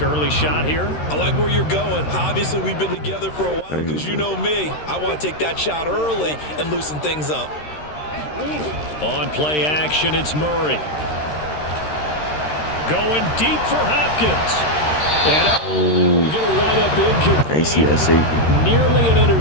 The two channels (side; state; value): right; late; 13 ms